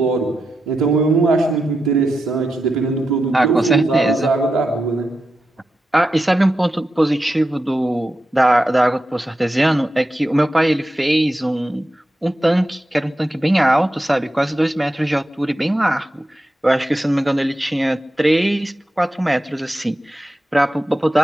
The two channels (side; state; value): both; normal; correlation 0.89